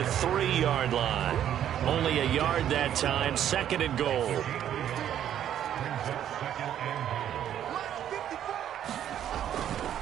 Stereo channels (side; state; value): left; quieter; 10.5 dB